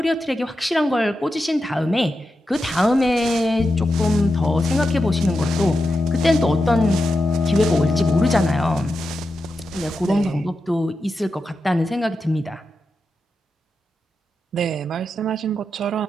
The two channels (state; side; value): normal; both; correlation 0.88